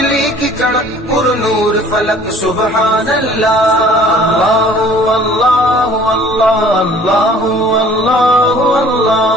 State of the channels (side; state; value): both; normal; correlation 0.52